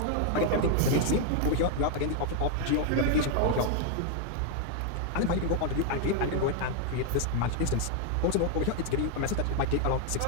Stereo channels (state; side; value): different; both; correlation 0.00